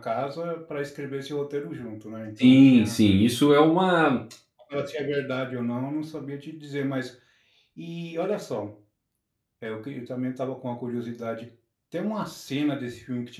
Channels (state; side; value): identical; both; correlation 1.00